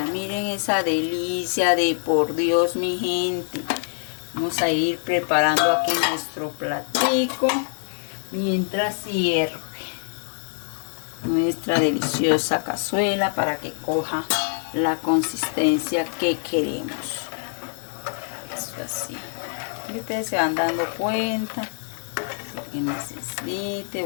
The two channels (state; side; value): silent; right; 62 dB below the other